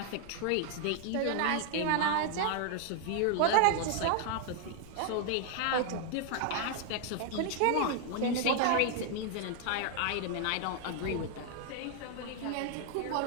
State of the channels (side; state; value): both; different; correlation 0.00